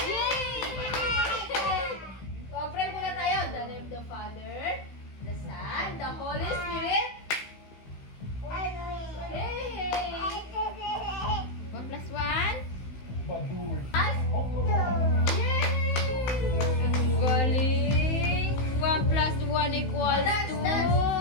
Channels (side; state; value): right; late; 16 ms